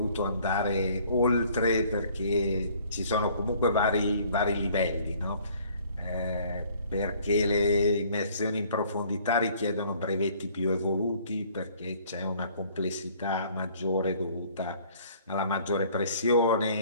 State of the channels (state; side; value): inverted; both; correlation -0.57